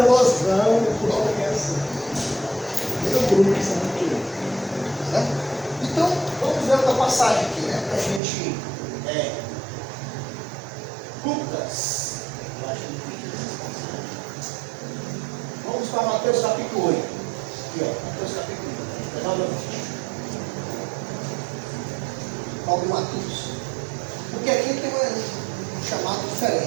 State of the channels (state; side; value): drops out; left; at 8.2 s